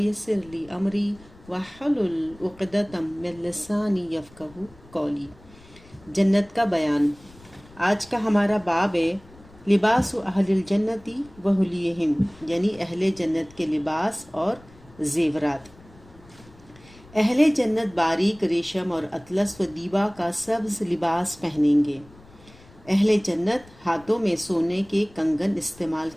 لی امری واحلل عقدۃ من لسانی یفقہوا قولی۔ جنت کا بیان۔ آج کا ہمارا باب ہے لباس اہل الجنتی وحلیہم، یعنی اہل جنت کے لباس اور زیورات۔ اہل جنت باریک ریشم اور اطلس و دیبا کا سبز لباس پہنیں گے۔ اہل جنت ہاتھوں میں سونے کے کنگن استعمال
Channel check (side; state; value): left; noise; rumble, 24 dB below the sound